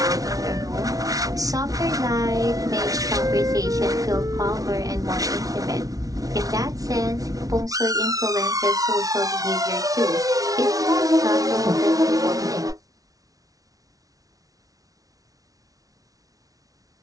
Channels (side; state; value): left; late; 0.18 ms